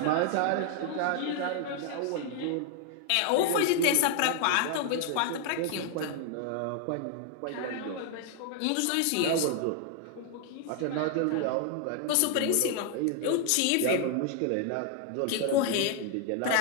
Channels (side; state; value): both; different; correlation 0.00